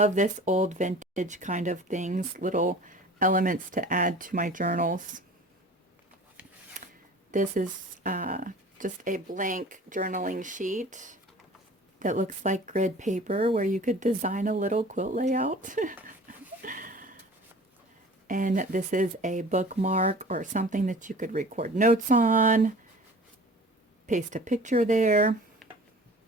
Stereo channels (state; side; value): normal; both; correlation 0.44